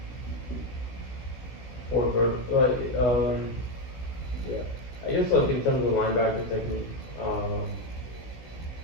four vertical, like, yeah. I guess, like, in terms of linebacker technique,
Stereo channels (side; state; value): right; late; 16 ms